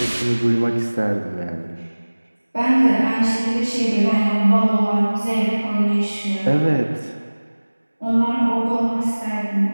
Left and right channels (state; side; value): inverted; both; correlation -1.00